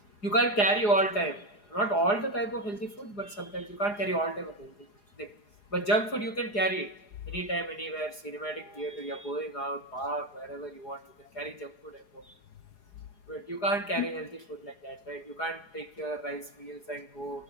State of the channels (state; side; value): late; right; 4.8 ms